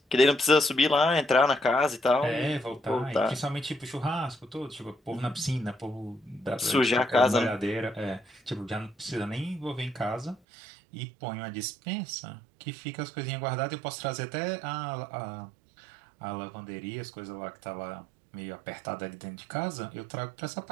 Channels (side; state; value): left; drops out; at 10.4 s